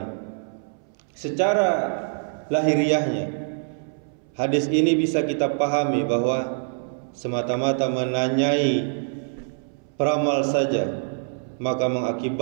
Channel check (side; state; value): left; silent; 62 dB below the other